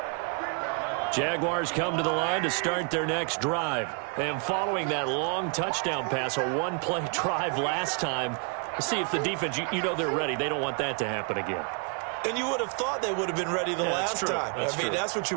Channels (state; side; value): quieter; left; 38.8 dB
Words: Jaguars come to the line to start their next drive. And following that long touchdown pass, a one-play drive last time, see if the defense, you know they're ready. They don't want that to happen again. And you would have thought they would have been ready the last time. That's what